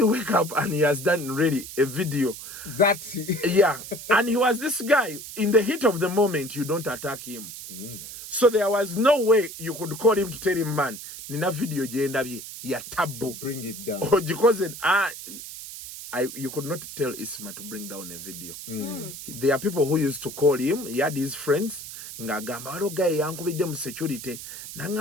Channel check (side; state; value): right; noise; hiss, 11 dB below the sound